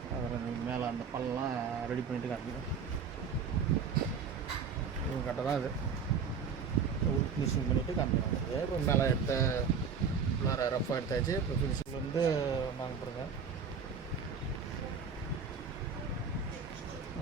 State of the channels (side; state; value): left; quieter; 6.0 dB